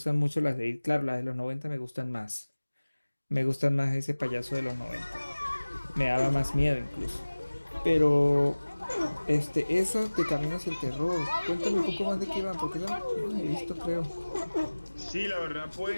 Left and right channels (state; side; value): inverted; both; correlation -1.00